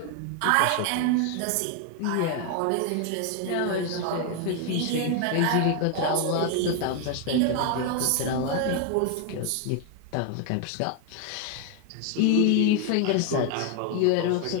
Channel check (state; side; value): different; both; correlation 0.01